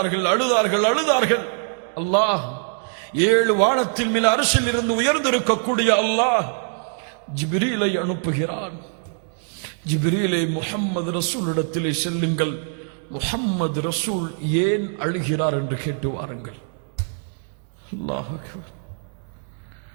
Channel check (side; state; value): left; silent; 58 dB below the other